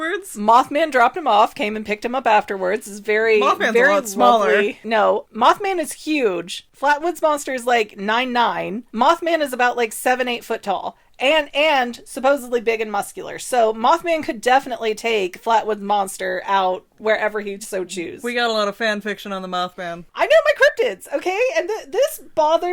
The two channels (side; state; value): both; identical; correlation 1.00